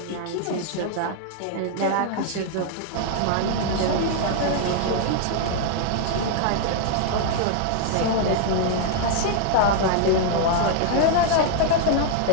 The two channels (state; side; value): different; both; correlation 0.00